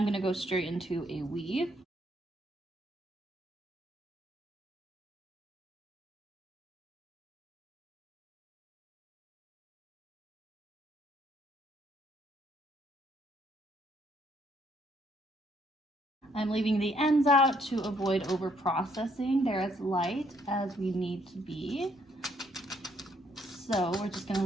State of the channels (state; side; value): normal; both; correlation 0.70